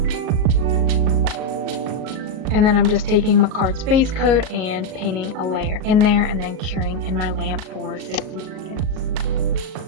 And then I'm just taking Makartt'S base coat and painting a layer in there and then curing in my lamp for 60 seconds.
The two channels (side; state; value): left; late; 38 ms